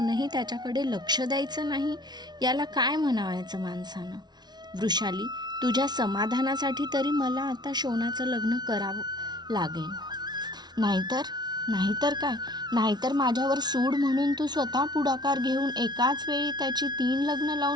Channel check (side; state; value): left; late; 0.20 ms